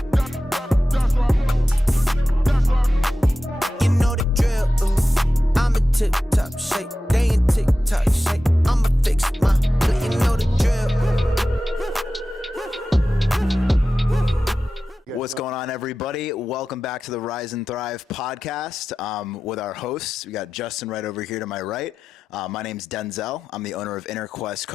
You know the drill. I'm a tip-top shape. They in tick-tock shape. I'ma fix my play. You know the drill. What's going on, everybody? Welcome back to the Rise and Thrive podcast with our hosts. We got Justin right over here to my right. My name's Denzel. I'm the owner of Inner Quest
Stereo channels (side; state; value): both; normal; correlation 0.93